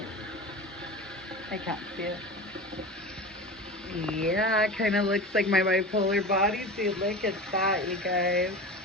I can't see it. Yeah, it kind of looks like my bipolar bodysuit. Look at that, you guys.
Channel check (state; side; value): normal; both; correlation 0.31